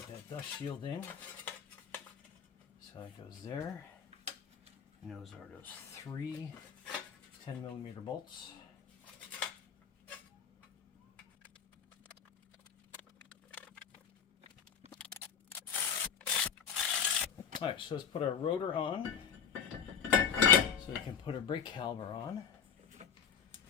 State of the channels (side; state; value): right; quieter; 7.5 dB